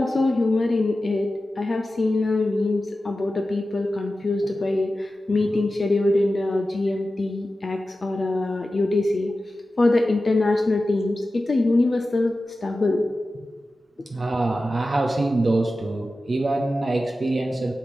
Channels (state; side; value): normal; both; correlation 0.94